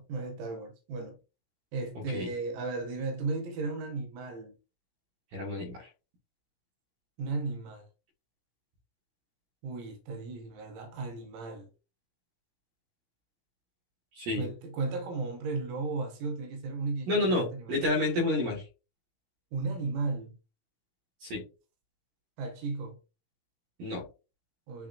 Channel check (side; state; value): left; late; 17 ms